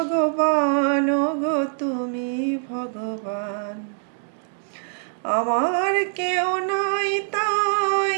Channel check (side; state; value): left; silent; digital silence